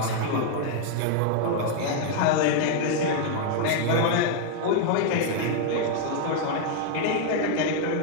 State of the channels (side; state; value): both; different; correlation 0.00